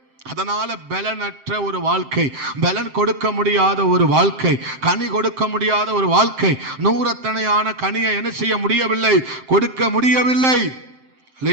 அதனால பலனற்ற ஒரு வாழ்க்கை, பலன் கொடுக்க முடியாத ஒரு வாழ்க்கை, கனி கொடுக்க முடியாத ஒரு வாழ்க்கை, நூறத்தனையான கனியை என்ன செய்ய முடியவில்லை? கொடுக்க முடியவில்லை.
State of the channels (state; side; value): late; left; 7.6 ms